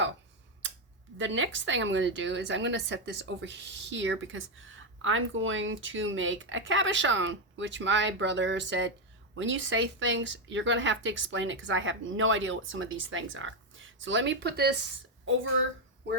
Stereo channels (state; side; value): normal; both; correlation 0.05